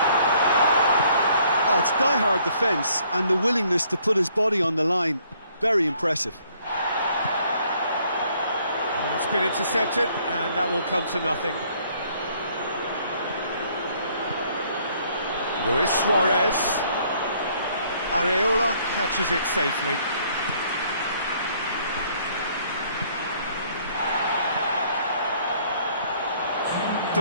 Oh, it's die-hard defence and the willingness to put his body on the line. Very impressive. Well, it's been intercepted, and that will come to nothing. Luis Suarez. Areola catches it safely.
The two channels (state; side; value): inverted; both; correlation -0.64